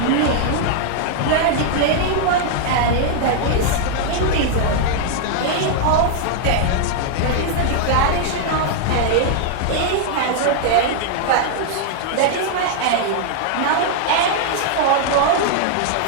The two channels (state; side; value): different; both; correlation -0.01